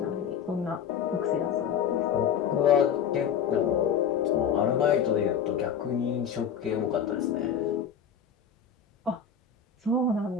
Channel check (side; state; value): right; quieter; 7.6 dB